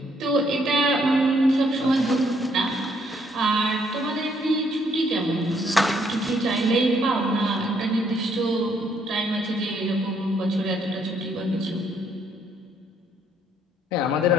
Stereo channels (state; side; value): normal; both; correlation 0.69